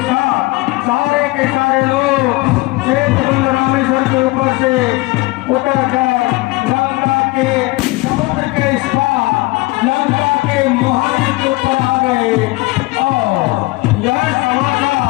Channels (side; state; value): right; quieter; 22.0 dB